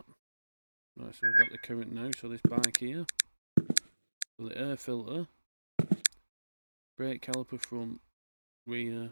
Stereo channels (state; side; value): inverted; both; correlation -1.00